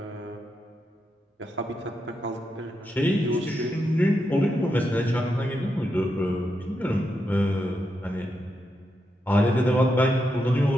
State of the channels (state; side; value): normal; both; correlation 0.84